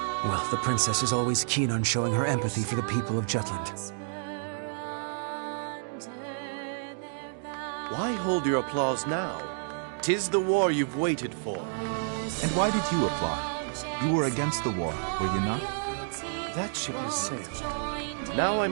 Well, the princess is always keen on showing her empathy for the people of Jutland. Why hold your applause now? 'Tis the war you've waited for. And why did you applaud? You were against the war, were you not? That ship has sailed. Now I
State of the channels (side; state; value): left; silent; digital silence